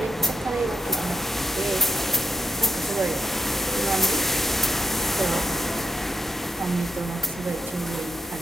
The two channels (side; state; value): both; normal; correlation 0.82